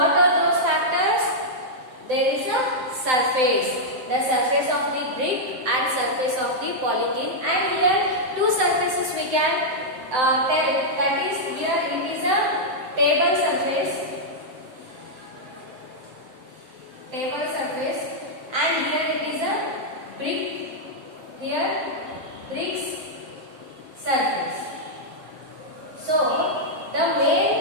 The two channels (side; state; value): left; late; 7.8 ms